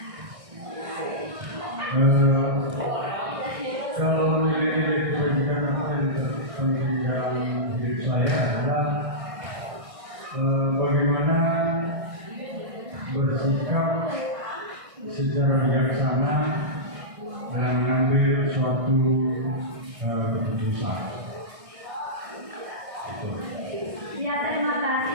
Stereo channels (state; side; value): late; left; 1.6 ms